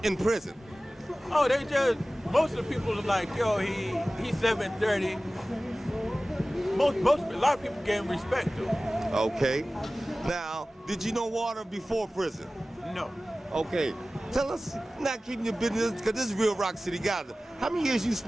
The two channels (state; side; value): normal; both; correlation 0.97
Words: in prison? Oh, they just, most of the people are like, yo, he's 730. A lot of people gave him respect though. Okay. Now, did you know Walter before prison? No. Okay. Tell us, not keeping your business, because this is real Rock City Gaza. How many years you